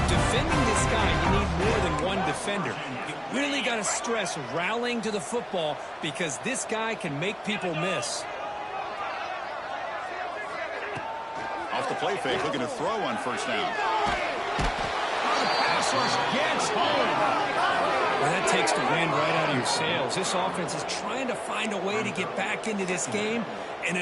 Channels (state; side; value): identical; both; correlation 1.00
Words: defending this guy, you need more than one defender. defender. You really got to stress rallying to the football because this guy can make people miss. Off the play fake, looking to throw on first down. The pass rush gets home. Well, that takes the wind right out of your sails. This offense is trying to find a way to get back into this game, and